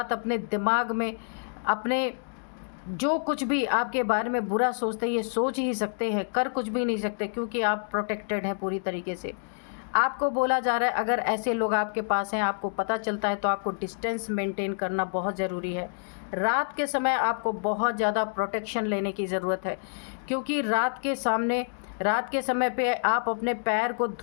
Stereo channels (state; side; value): silent; right; digital silence